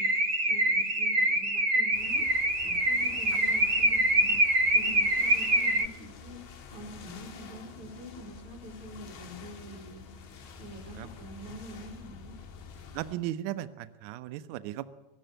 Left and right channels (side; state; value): left; late; 7.4 ms